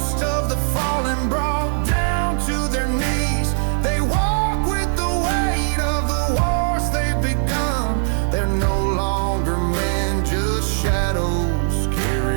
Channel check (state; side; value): silent; left; 57 dB below the other